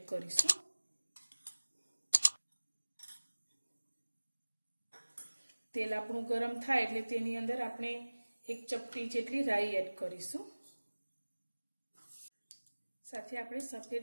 करीशुं। तेल आपणुं गरम थाय एटले तेनी अंदर आपणे एक चपटी जेटली राई एड करीशुं। साथे आपणे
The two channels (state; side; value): inverted; both; correlation -1.00